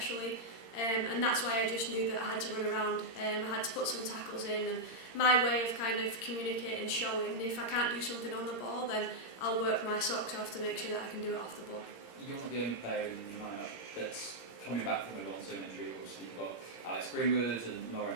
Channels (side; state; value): right; late; 17 ms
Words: And that's why I just knew that I had to run around, I had to put some tackles in, and my way of kind of communicating, showing, if I can't do something on the ball, then I'll work my socks off to make sure that I can do it off the ball. You're not the only player in the lineup that's coming back from a long-term injury. Obviously you've got Alex Greenwood and Lauren